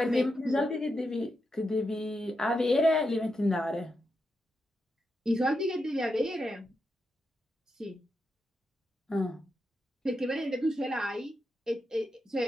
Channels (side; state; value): both; normal; correlation 0.86